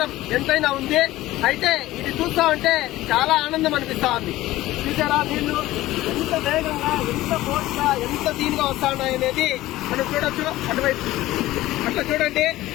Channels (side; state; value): right; quieter; 16.5 dB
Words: ఎంతైనా ఉంది. అయితే ఇది చూస్తా ఉంటే చాలా ఆనందం అనిపిస్తా ఉంది. చూసారా నీళ్లు ఎంత వేగంగా, ఎంత ఫోర్స్గా, ఎంత దీనిగా వస్తా ఉన్నాయనేది మనం చూడొచ్చు. అటువైపు అట్లా చూడండి.